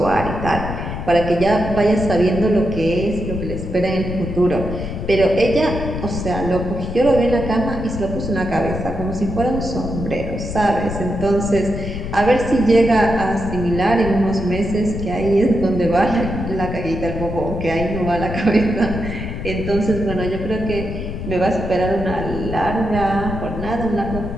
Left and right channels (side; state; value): left; noise; rumble, 6 dB below the sound